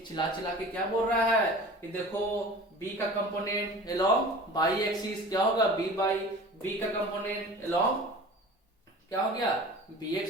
चिल्ला के क्या बोल रहा है कि देखो बी का कंपोनेंट अलोंग बाई एक्सिस क्या होगा, बी बाई, बी का कंपोनेंट अलोंग क्या हो गया, बी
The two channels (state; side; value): normal; both; correlation 0.39